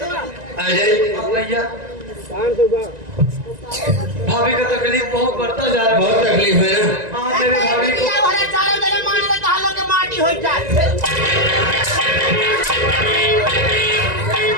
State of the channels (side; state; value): left; late; 1.9 ms